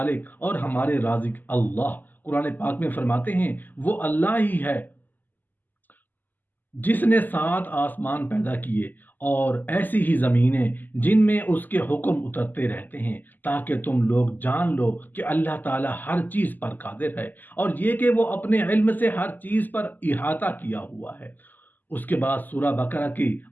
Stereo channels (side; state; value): right; late; 0.086 ms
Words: और हमारे राज़िक अल्लाह कुरान पाक में फरमाते हैं, वो अल्लाह ही है जिसने सात आसमान पैदा किए और ऐसी ही ज़मीनें जिनमें उसके हुक्म उतरते रहते हैं, ताकि तुम लोग जान लो कि अल्लाह ताला हर चीज़ पर कादिर है और ये कि वो अपने इल्म से हर चीज़ पर इहाता किया हुआ है। उसके बाद सूरह बकरा के